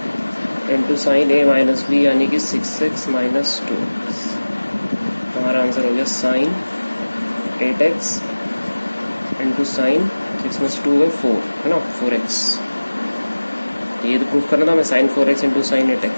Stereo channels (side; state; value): both; inverted; correlation -1.00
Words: into sine A minus B यानी कि 6x माइनस 2x। हमारा आंसर हो गया साइन 8x इंटू साइन 6 में 2 है 4 है ना 4x। ये तो प्रूफ करना था हमें sign 4x into sine